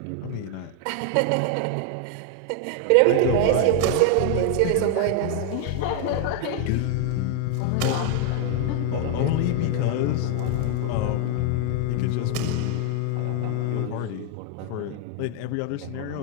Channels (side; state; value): both; different; correlation 0.00